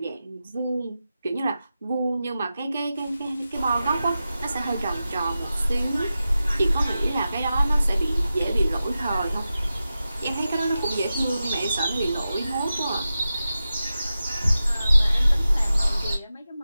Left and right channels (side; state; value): both; inverted; correlation -0.93